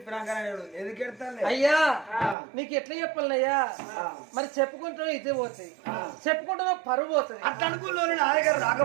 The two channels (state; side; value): drops out; left; at 2.4 s